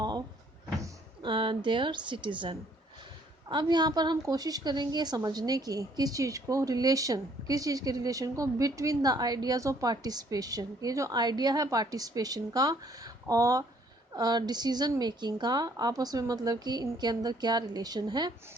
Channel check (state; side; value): normal; both; correlation 0.63